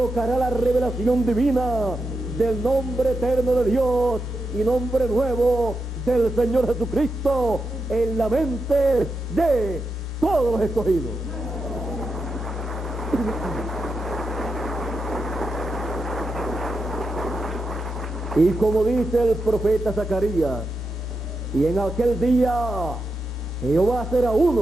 la revelación divina del nombre eterno de Dios y nombre nuevo del Señor Jesucristo en la mente de todos los escogidos. Y como dice el profeta Zacarías, y en aquel día Jehová será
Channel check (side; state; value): both; normal; correlation 0.87